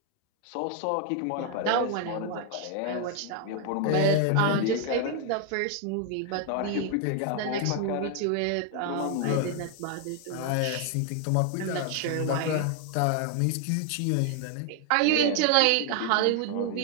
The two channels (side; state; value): both; different; correlation 0.00